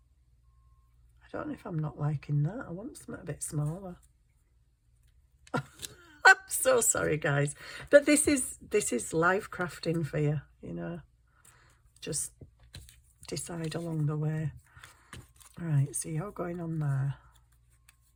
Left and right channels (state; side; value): identical; both; correlation 1.00